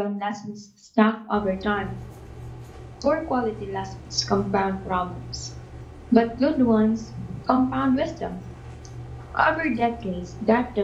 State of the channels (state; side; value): identical; both; correlation 1.00